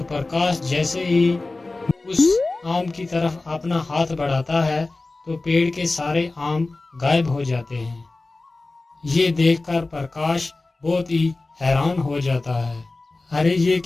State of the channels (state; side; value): quieter; right; 3.3 dB